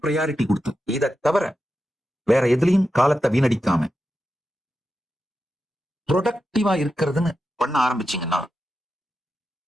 ப்ரையாரிட்டி கொடுத்து, இதை தவிர வேற எதுலயும் காலத்தை வீணடிக்காம ப்ரொடக்டிவா இருக்கிறதுன்னு பண்ண ஆரம்பிச்சீங்கன்னா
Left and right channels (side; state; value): both; normal; correlation 0.89